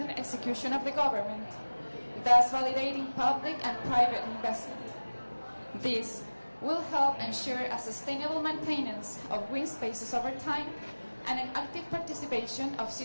execution of the government, thus validating public and private investment. This will help ensure a sustainable maintenance of green spaces over time and an active participation of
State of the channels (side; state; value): both; inverted; correlation -1.00